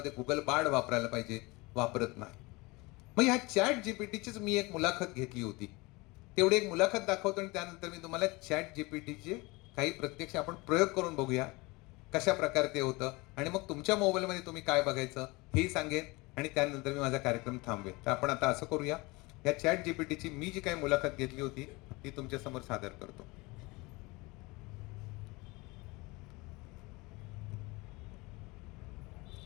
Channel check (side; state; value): right; quieter; 24.2 dB